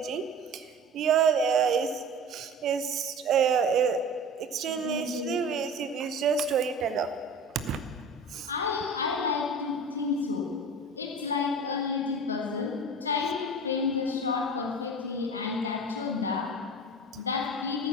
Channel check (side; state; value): both; normal; correlation 0.36